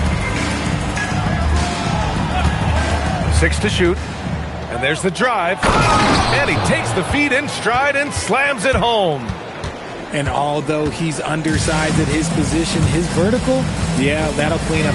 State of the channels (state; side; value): identical; both; correlation 1.00